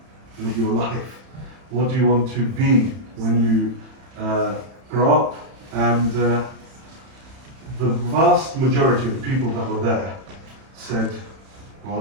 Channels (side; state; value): left; late; 31 ms